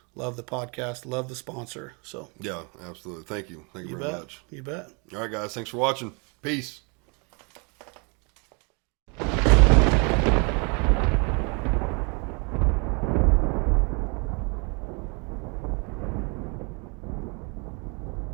Love the podcast. Love the sponsor. So Yeah, absolutely. Thank you. Thank you you very bet. much. You bet. All right, guys. Thanks for watching. Peace.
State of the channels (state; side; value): quieter; left; 33.1 dB